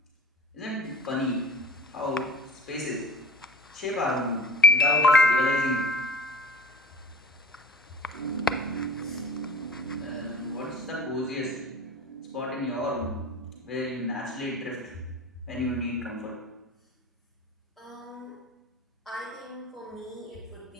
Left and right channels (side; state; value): both; normal; correlation 0.42